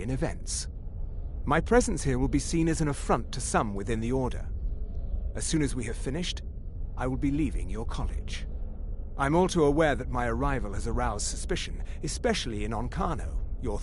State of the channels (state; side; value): identical; both; correlation 1.00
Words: in events. My presence here will be seen as an affront to some within the Order. As soon as we have finished, I will be leaving your college. I'm all too aware that my arrival has aroused suspicion, especially in Onkano, your